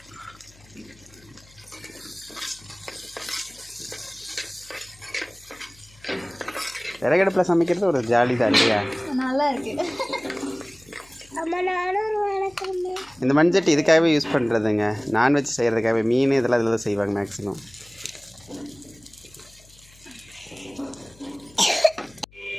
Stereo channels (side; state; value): left; noise; hum, 26 dB below the sound